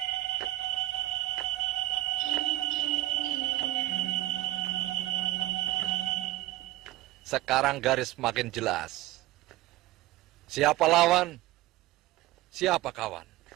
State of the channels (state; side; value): quieter; left; 16.5 dB